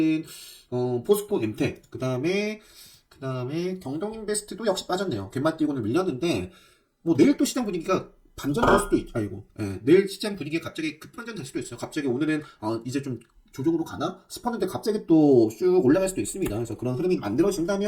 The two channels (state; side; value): identical; both; correlation 1.00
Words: 포스코 엠텍, 그 다음에 그 다음에 경동인베스트도 역시 빠졌네요. 갯맛 띄고는 밀렸는데, 뭐 내일 또 시장 분위기가 반전될 수도 있죠. 아이고, 예, 내일 시장 분위기가 갑자기 급반전 될 수도 있어요. 갑자기 오늘은 이제 좀 조정으로 가나 싶었는데 갑자기 또 쭉 올라갈 수도 있습니다. 그래서 그런 흐름이